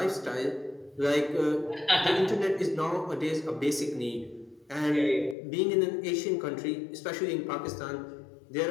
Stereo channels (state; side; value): drops out; right; at 5.4 s